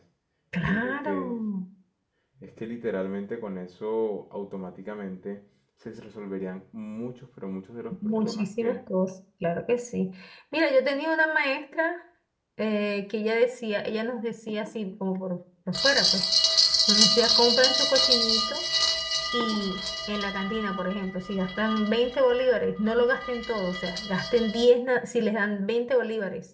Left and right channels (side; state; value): both; identical; correlation 1.00